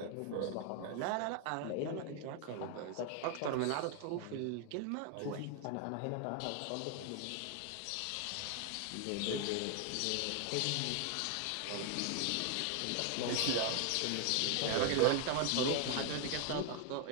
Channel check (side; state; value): both; different; correlation 0.00